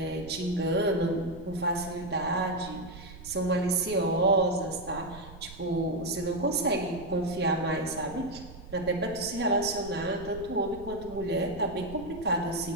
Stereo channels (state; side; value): noise; right; rumble, 16 dB below the sound